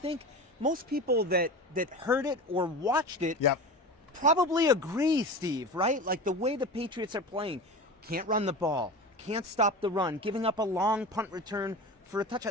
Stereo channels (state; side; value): normal; both; correlation 0.30